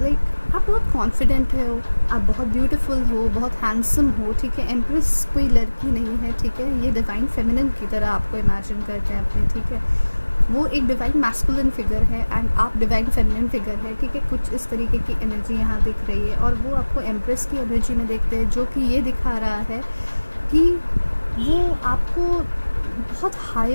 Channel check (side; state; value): both; inverted; correlation -1.00